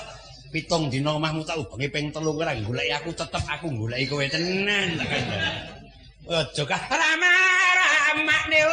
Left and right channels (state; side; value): identical; both; correlation 1.00